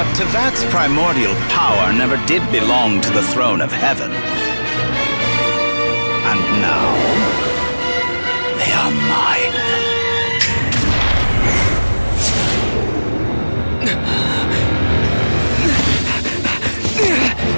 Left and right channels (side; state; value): both; inverted; correlation -1.00